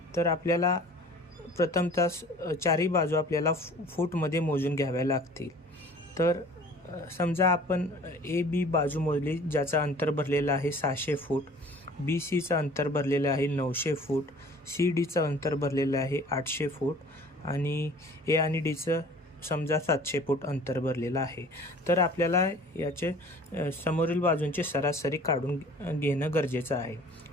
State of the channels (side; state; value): both; normal; correlation 0.48